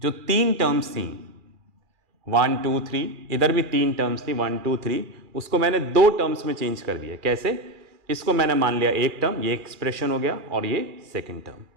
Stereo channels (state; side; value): late; left; 2.4 ms